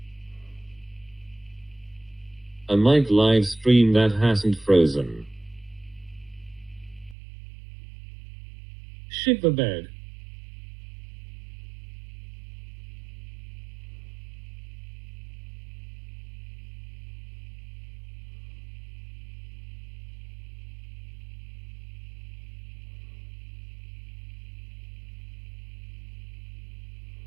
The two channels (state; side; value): drops out; left; at 7.2 s